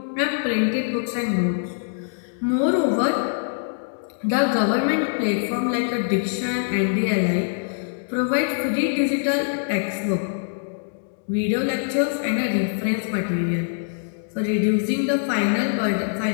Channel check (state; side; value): silent; right; digital silence